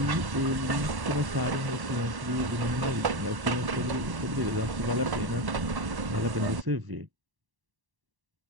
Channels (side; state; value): left; late; 1.1 ms